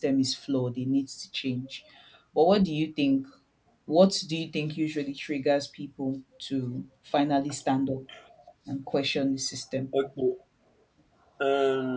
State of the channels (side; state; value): both; identical; correlation 1.00